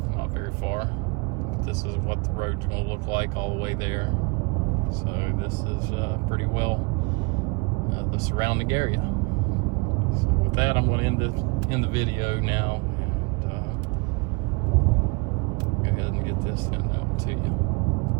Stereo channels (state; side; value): quieter; left; 29.8 dB